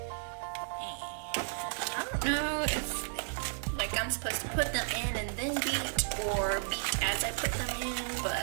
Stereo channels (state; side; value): silent; left; digital silence